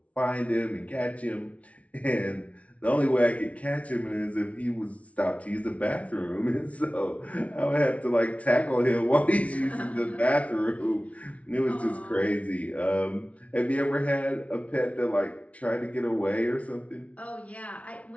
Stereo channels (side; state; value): right; late; 0.065 ms